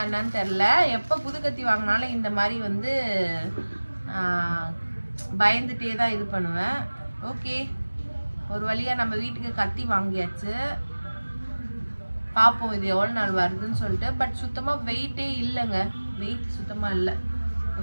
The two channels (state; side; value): inverted; both; correlation -1.00